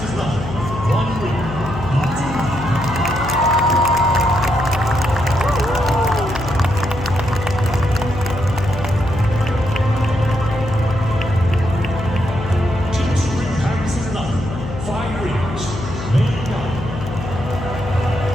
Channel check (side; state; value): left; noise; hum, 8 dB below the sound